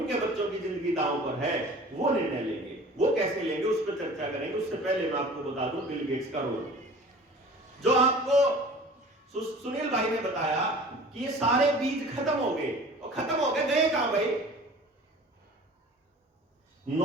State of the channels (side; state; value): both; normal; correlation 0.44